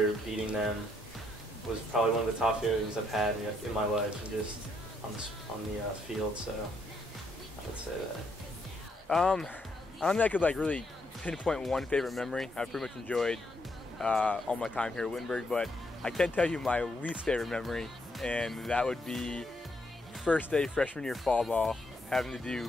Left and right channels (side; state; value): both; normal; correlation 0.75